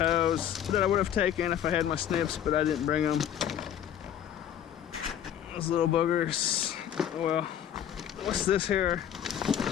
that I would have taken if I had my snips, but I didn't bring them. Those little boogers. Oh well. What's this here?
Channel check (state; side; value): quieter; right; 9.9 dB